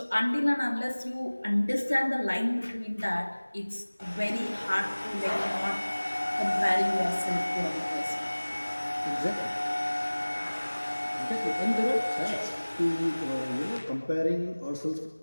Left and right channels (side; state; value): both; inverted; correlation -1.00